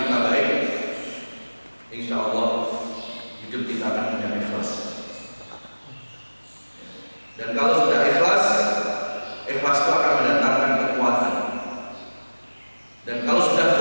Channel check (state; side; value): inverted; both; correlation -1.00